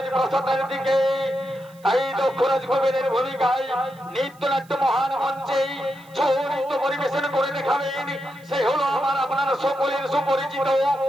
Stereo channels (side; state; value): right; noise; hiss, 28 dB below the sound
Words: দিকে। তাই দক্ষরাজ কুবেরের ভূমিকায় নৃত্যনাট্য মহান মঞ্চে ছৌ পরিবেশন করে দেখাবেন। সে হলো আমার আপনার সকলের সুপরিচিত